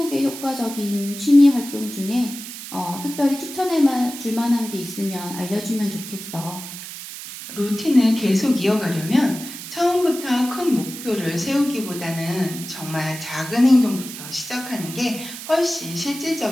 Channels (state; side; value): noise; right; hiss, 11 dB below the sound